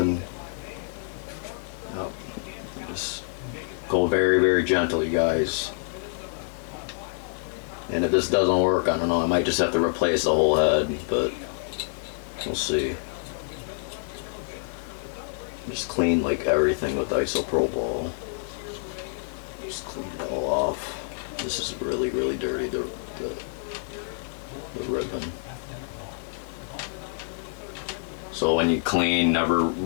Yep. Just go very, very gentle, you guys. And if this doesn't work, I don't know, I might just have to replace the whole head, but we'll see. Just clean like everything with isopropyl. Just clean it all off. This is really, really dirty, the ribbon. So when you clean,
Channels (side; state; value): right; silent; 60 dB below the other